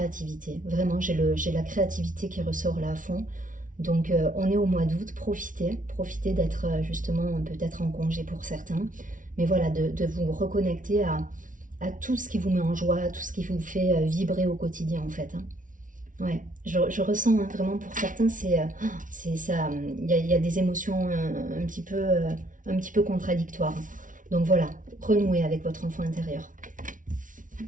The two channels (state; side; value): late; left; 0.38 ms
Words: Vraiment, j'ai la créativité qui ressort là à fond. Donc on est au mois d'août, profitez d'être justement peut-être en congé pour certains, mais voilà, de vous reconnecter à tout ce qui vous met en joie, tout ce qui vous fait vibrer au quotidien en fait. Ouais, je ressens vraiment pour certains, c'est ça, il y a des émotions un petit peu contradictoires. Donc voilà, renouez avec votre enfant intérieur.